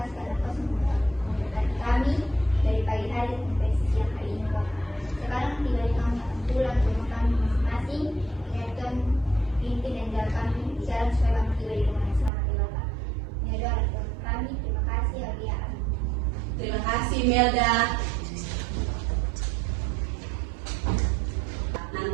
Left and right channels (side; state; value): left; drops out; at 12.3 s